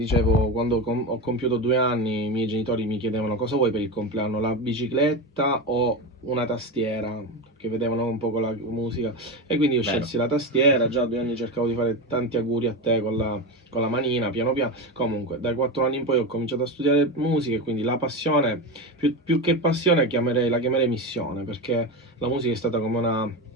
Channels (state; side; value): normal; both; correlation 0.19